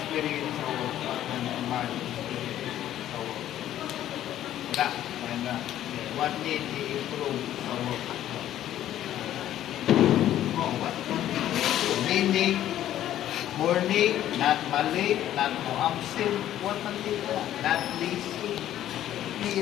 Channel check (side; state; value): right; quieter; 12.2 dB